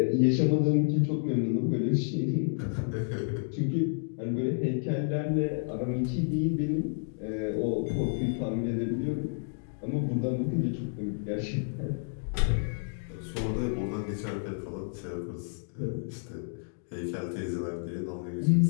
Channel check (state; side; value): silent; right; digital silence